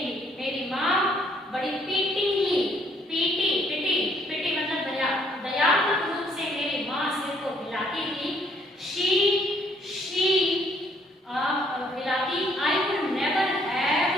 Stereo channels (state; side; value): normal; both; correlation 0.65